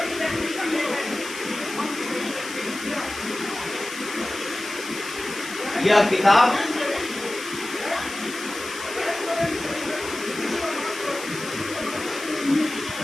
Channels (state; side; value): noise; left; hiss, 10 dB below the sound